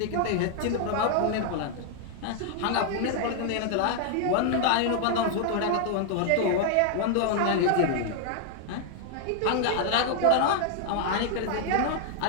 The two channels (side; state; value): both; different; correlation 0.00